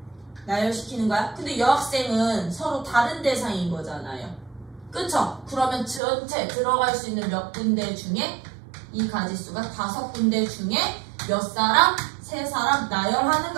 나열시키는 거야. 근데 여학생은 서로 다른 대상인 거잖아요. 그쵸? 그러면 전체 들어갈 수 있는 몇 군데 중에 이 가지수가 5군데 중에 몇 사람? 3사람 나열하는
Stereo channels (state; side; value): drops out; left; at 6.0 s